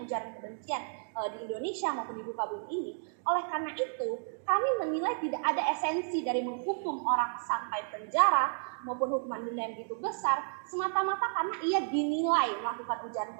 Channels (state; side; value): silent; left; digital silence